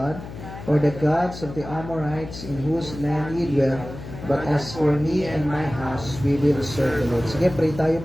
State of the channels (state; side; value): noise; left; hum, 12 dB below the sound